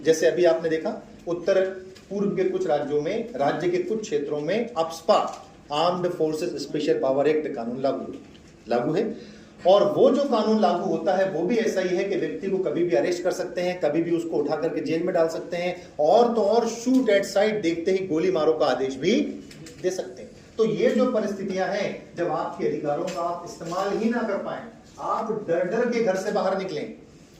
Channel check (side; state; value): both; identical; correlation 1.00